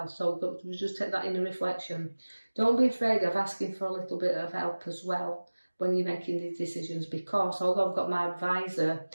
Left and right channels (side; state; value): both; inverted; correlation -1.00